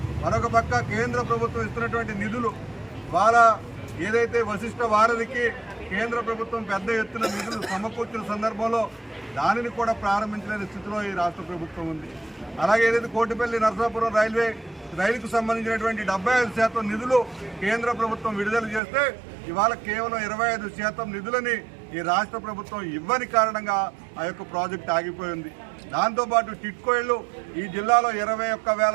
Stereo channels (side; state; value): left; drops out; at 18.8 s